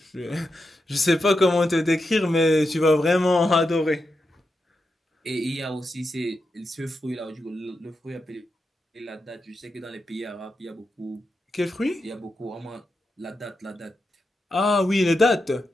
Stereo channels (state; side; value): normal; both; correlation 0.87